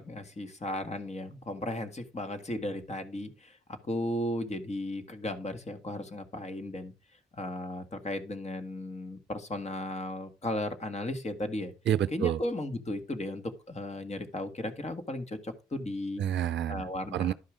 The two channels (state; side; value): normal; both; correlation 0.62